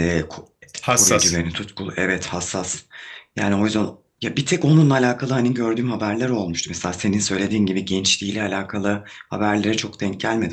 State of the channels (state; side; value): identical; both; correlation 1.00